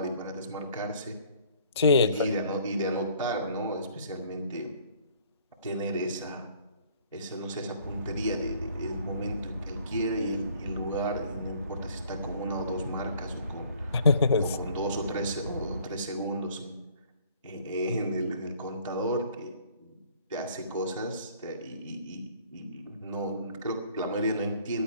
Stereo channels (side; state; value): both; inverted; correlation -0.57